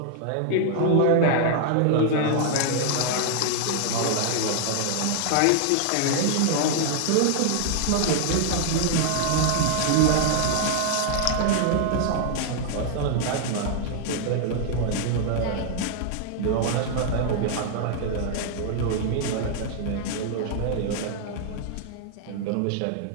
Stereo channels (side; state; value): both; different; correlation 0.00